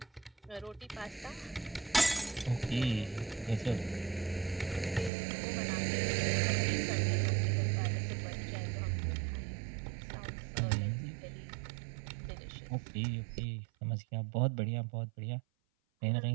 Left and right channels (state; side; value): drops out; left; at 5.1 s